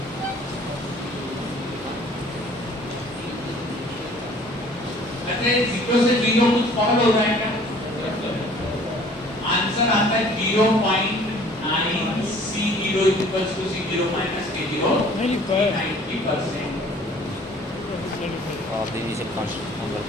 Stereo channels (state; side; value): normal; both; correlation 0.52